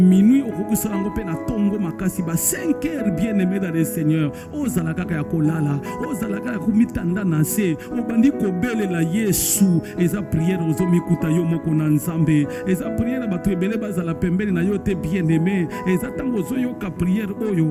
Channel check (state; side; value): identical; both; correlation 1.00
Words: okoki sala ngo pe na tongo makasi ba 5 heures bien-aimé dans le Seigneur. Ozala kaka ya kolala, ozala kaka kumitanda na se, obandi kobelela Yesu. Eza prière ozomikuta yo moko na nzambe. Eza prière ba trebele bazala pembele na yo te bien-aimé. Eza tango ozoyoka prière